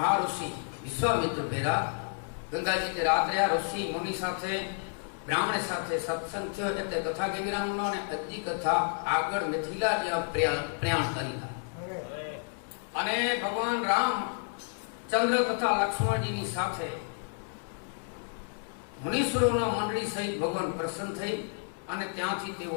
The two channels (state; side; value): silent; right; 55 dB below the other